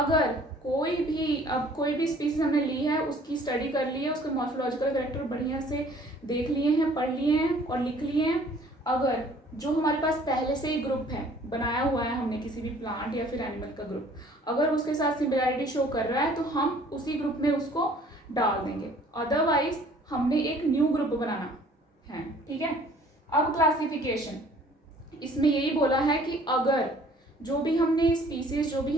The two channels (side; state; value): both; normal; correlation 0.55